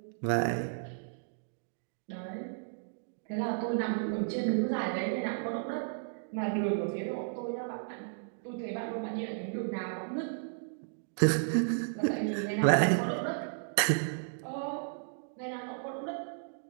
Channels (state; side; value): silent; left; digital silence